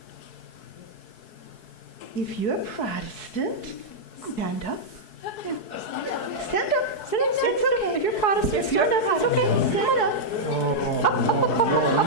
If you're Protestant, Stand up. Stand up. Stand up, stand It's up. okay. If you're Protestant, stand up. It's okay. Stand up.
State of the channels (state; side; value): late; right; 4.7 ms